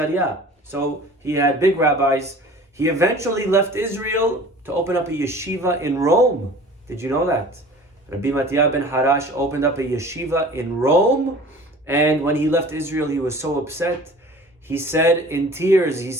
So he had big rabbis. He eventually left Israel to open up a yeshiva in Rome. Did you know that? Rabbi Mattia ben Harash opened up a yeshiva in Rome, and when he left Israel, he was so upset. He said in tears,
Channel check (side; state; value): both; normal; correlation 0.44